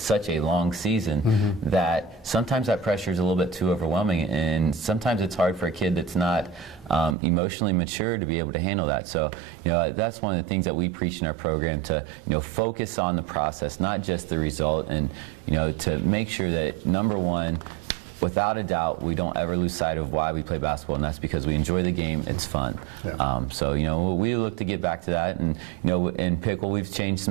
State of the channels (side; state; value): left; drops out; at 7.2 s